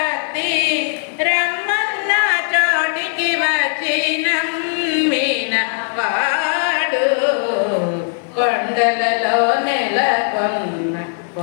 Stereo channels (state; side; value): silent; right; 67 dB below the other